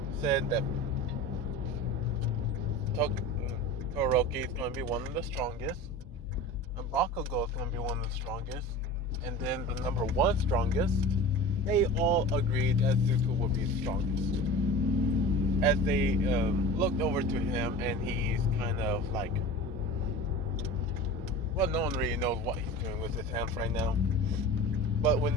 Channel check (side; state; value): both; normal; correlation 0.35